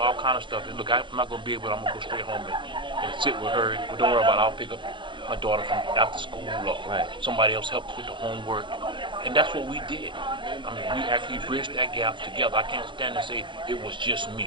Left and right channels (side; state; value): left; late; 0.23 ms